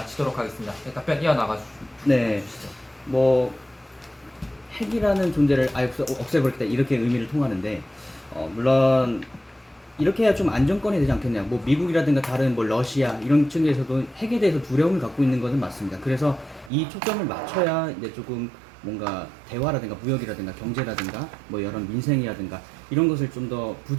하겠습니다. 네, 답변 이어나가 주시죠. 네, 뭐 핵이라는 존재를 아예 없애버리겠다 이렇게 의미를 통하는데 물론 이렇게 해야 좀 안정권이 되지 않겠냐. 뭐 미국이라든가 다른 뭐 러시아 이런 측에서도 핵에 대해서 두려움을 갖고 있는 것은 맞습니다. 그래서 이 초점을 맞춰야 이제 조금 뭔가 대화라든가 무역이라든가 경제라든가 뭐 여러 민생이라든가 이런 것을 좀 더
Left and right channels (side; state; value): left; drops out; at 16.7 s